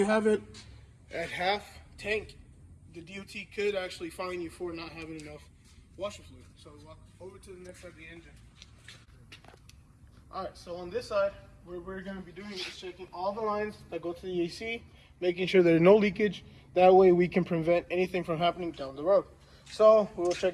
have it at half tank, the DOT could actually fine you for not having enough washer fluid. So walk over to the next side of the engine. Alright, so on this side, what we're going to be doing is checking all the lines that go to the AC, making sure there's no leakage. That way we can prevent anything from happening down the road. So we will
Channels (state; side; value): identical; both; correlation 1.00